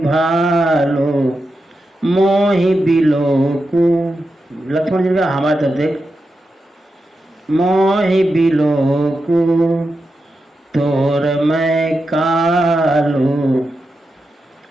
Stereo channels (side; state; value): both; normal; correlation 0.89